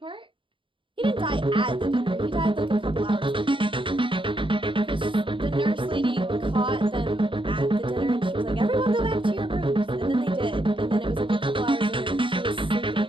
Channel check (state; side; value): late; left; 0.25 ms